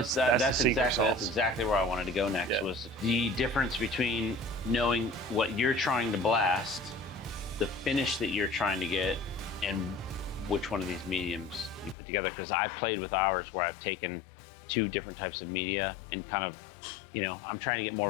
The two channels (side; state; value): right; drops out; at 12.0 s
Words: exactly where I wanted to go next. Was the difference between knowing what you're trying to blast, the finish that you're trying to get, and which one of these mediums you put together. Because I've played with ours where I've taken 2 different types of media and kind of, I'm trying to get